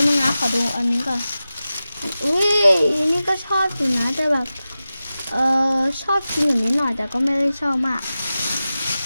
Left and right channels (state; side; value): inverted; both; correlation -0.94